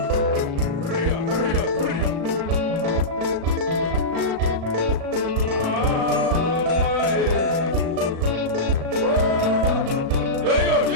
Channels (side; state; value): left; late; 35 ms